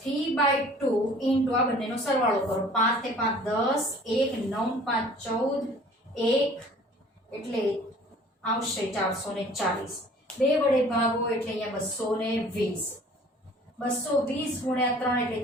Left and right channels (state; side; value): normal; both; correlation 0.50